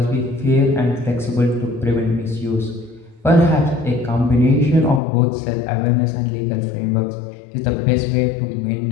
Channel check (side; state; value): right; drops out; at 5.0 s